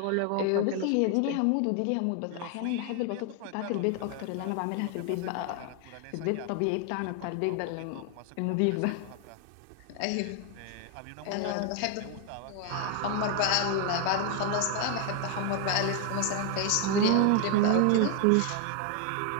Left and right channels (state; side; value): different; both; correlation 0.01